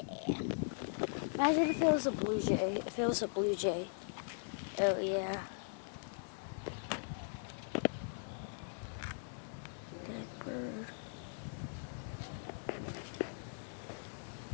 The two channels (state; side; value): silent; right; digital silence